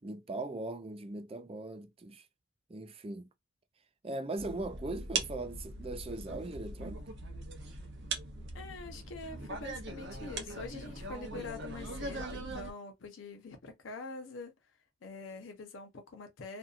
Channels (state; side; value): normal; both; correlation 0.38